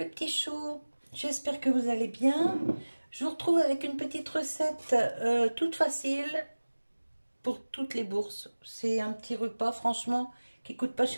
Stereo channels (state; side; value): inverted; both; correlation -1.00